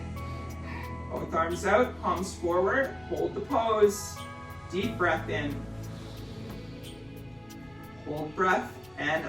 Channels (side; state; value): left; noise; rumble, 27 dB below the sound